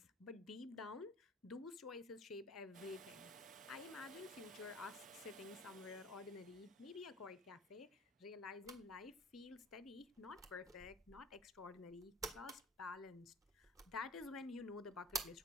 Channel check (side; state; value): both; normal; correlation 0.44